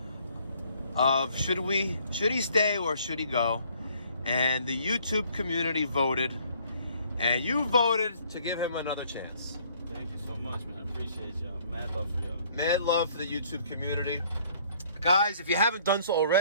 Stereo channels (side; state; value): both; inverted; correlation -0.61